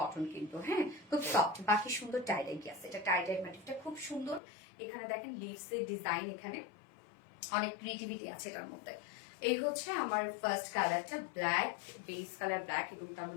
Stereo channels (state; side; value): drops out; right; at 4.4 s